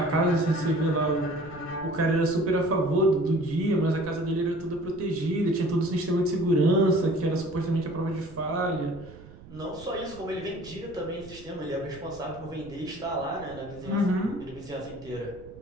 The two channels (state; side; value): noise; right; rumble, 19 dB below the sound